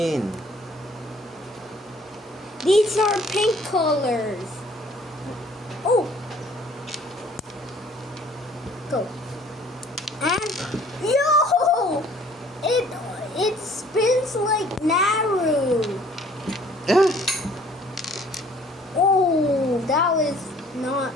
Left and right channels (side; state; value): both; normal; correlation 0.56